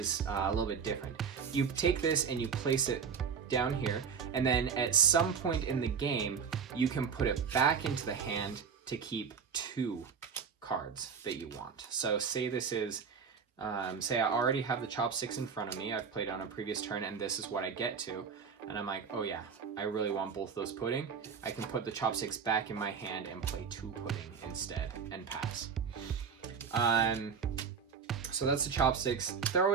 a little bit different. You take this and you place it down here, and then at some point in the game, you can put it back into the hand to keep 2 cards that you want. So say this is, say I already have the chopsticks in front of me, I've played on a previous turn, and this is what I get to, and I'm like, oh yeah, I really want both those pudding. I can put the chopsticks back in my hand and play 2 pudding instead and pass. So that's the chopsticks. They're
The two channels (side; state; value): left; quieter; 6.3 dB